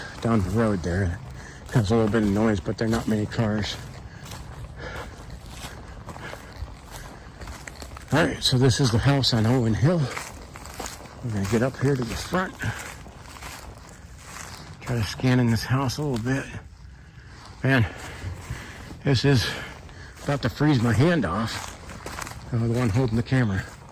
down the road there. Has a little bit of noise, but there are not many cars. Alright, so this is the house on Owen Hill. We're going to get up here to the front. Try to scan in this house a little bit. Man, this is about to freeze my hand off. I'm the one holding the camera.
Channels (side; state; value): both; identical; correlation 1.00